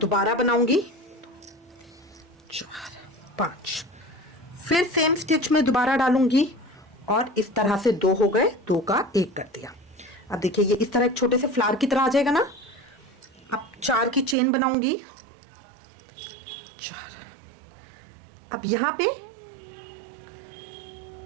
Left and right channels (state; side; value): drops out; left; at 14.4 s